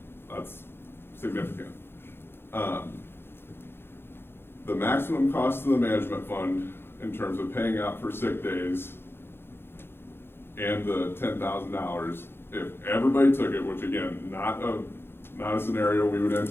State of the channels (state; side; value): late; right; 0.11 ms